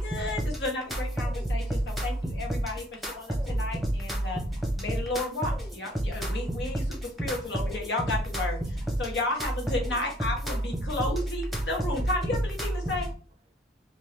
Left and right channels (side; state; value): both; normal; correlation 0.62